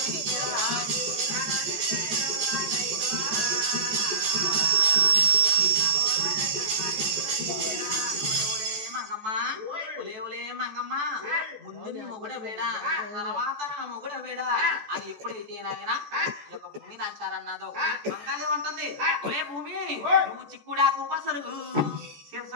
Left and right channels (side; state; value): left; late; 14 ms